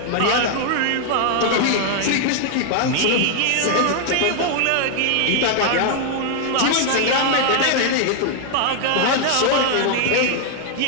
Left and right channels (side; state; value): both; different; correlation 0.00